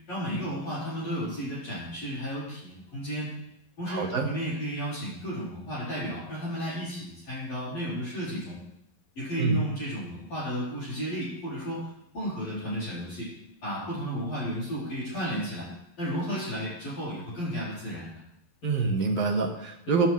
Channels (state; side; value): late; right; 11 ms